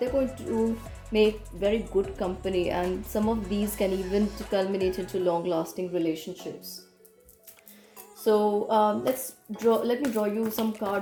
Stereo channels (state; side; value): identical; both; correlation 1.00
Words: they're going to make very good company, and some of these can even culminate into long-lasting relationships. So let me draw you some